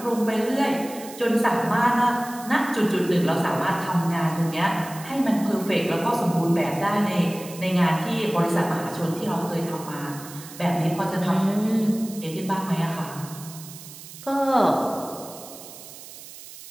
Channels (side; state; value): right; noise; hiss, 16 dB below the sound